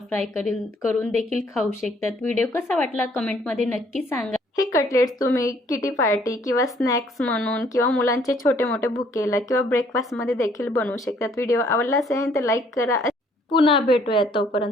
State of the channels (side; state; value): both; normal; correlation 0.63